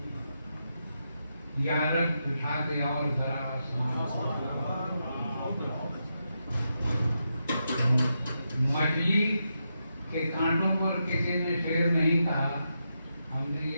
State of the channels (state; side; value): inverted; both; correlation -0.84